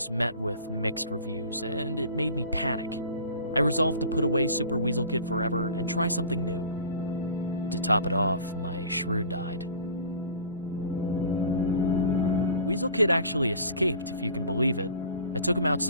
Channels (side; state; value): both; inverted; correlation -0.42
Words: met with mixed reviews, and it made me panic. I resolved to put away Super Weasel Kid forever and try something new. To top it off, my shrew died. Weasel Kid actually escaped, if you can believe it. I took him